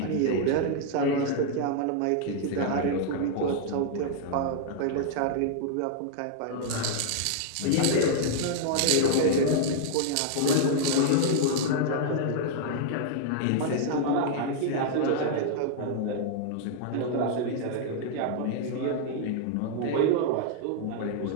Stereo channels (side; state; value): both; different; correlation -0.01